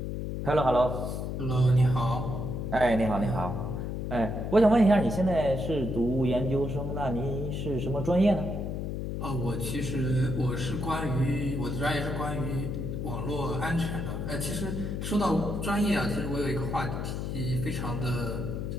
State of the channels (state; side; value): noise; left; hum, 3 dB below the sound